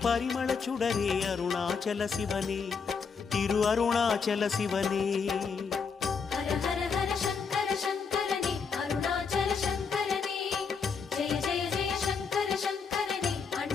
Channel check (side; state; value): right; quieter; 5.6 dB